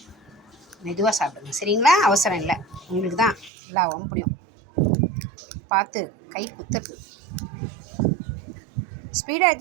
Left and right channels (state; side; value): drops out; left; at 3.5 s